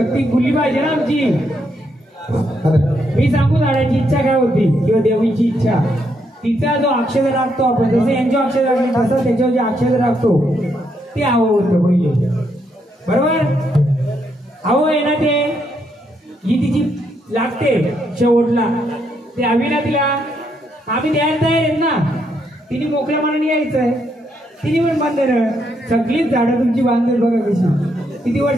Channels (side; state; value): both; normal; correlation 0.77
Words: खुली पाहिजे ना आमची मी सांगू झाडाची इच्छा काय होती किंवा देवीची इच्छा तिचा जो अक्षर राखतो आपण जसं यांच्या अक्षर राखले तसं त्याच्यावर जे अक्षर राखतो ते हवं होतं पहिले बरोबर हवं आहे ना ते ही तिची लागते शेवटला ते हवी ना तिला आम्ही द्यायला तयार आहेत ना तिने मोकळ्या मनाने यायचंय तिने पण बांधलेलं सगळीच झाडं तुमची बांधलेत बघा कशी किती